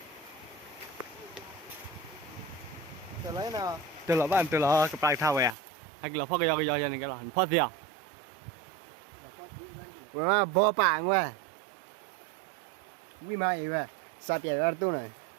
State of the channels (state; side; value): drops out; left; at 5.6 s